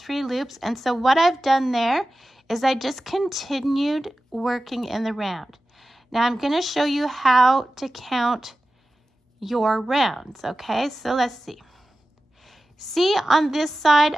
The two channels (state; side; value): normal; both; correlation 0.95